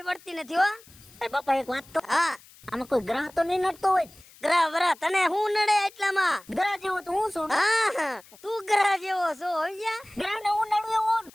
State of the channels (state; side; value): noise; left; hiss, 24 dB below the sound